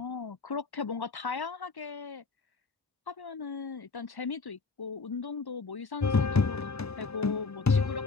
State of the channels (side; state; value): right; quieter; 4.3 dB